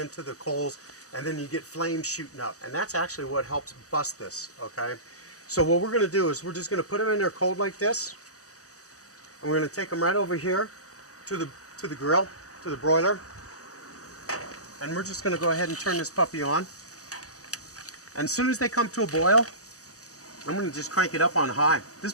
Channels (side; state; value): right; late; 0.66 ms